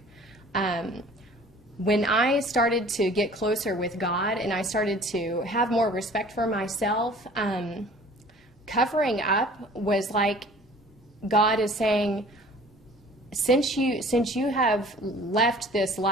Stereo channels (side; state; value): both; normal; correlation 0.49